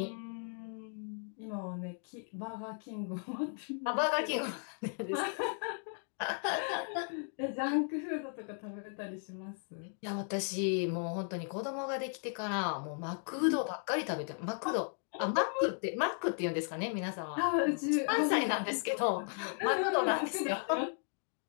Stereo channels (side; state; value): right; silent; 54 dB below the other